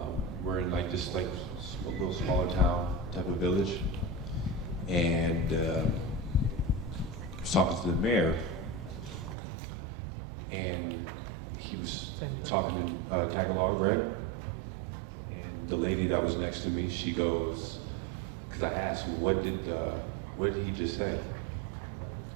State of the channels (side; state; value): left; drops out; at 9.3 s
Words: we're in like this like a little smaller town type of village, and I was talking to the mayor, and he was talking in Tagalog, right? And the lady that was next to me, she goes, because I asked, what did he just say?